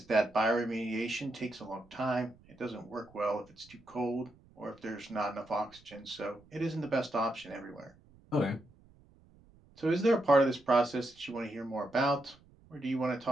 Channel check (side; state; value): right; noise; rumble, 27 dB below the sound